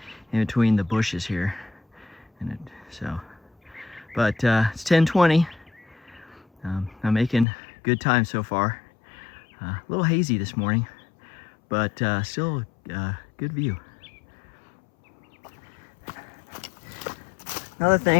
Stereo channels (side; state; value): right; drops out; at 7.5 s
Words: in between the bushes here. But it's 10:20. I'm making good time so far. A little hazy this morning, but still good view. Another